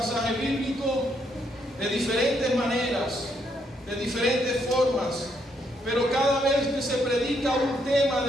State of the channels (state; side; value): normal; both; correlation 0.74